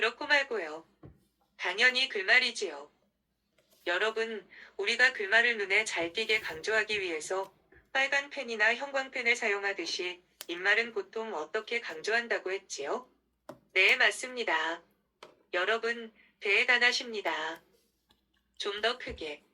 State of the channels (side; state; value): both; identical; correlation 1.00